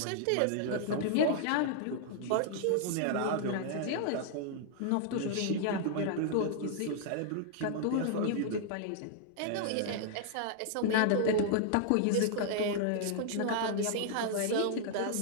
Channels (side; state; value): both; different; correlation -0.01